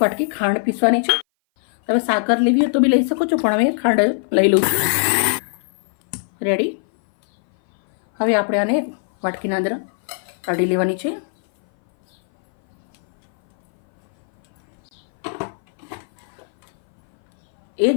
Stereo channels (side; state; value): right; silent; 59 dB below the other